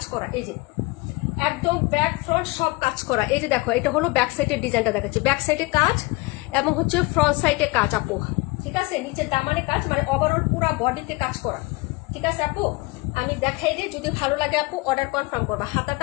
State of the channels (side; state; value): right; quieter; 23.9 dB